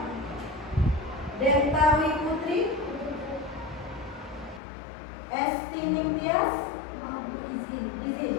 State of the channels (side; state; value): right; drops out; at 4.6 s